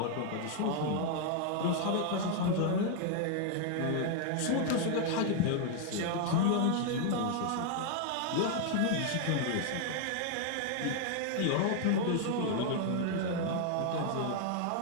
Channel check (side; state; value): both; different; correlation 0.00